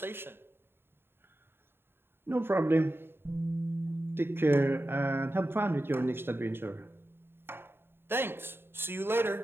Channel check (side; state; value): left; late; 0.11 ms